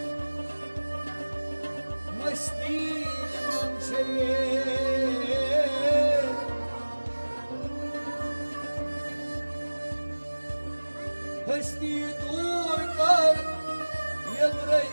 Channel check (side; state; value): both; inverted; correlation -1.00